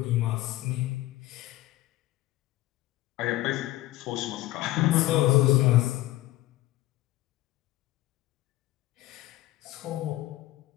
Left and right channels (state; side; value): quieter; right; 16.8 dB